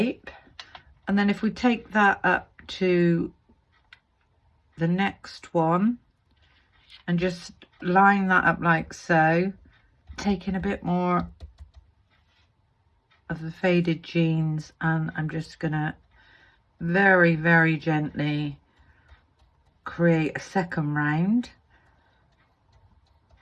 And then if we take that up to the next one and just line that up like so, taking a bit more of the faded jeans, and I'm just gonna very, very gently create a second round.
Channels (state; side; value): identical; both; correlation 1.00